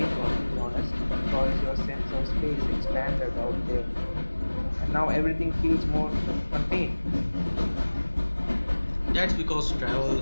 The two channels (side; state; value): both; inverted; correlation -1.00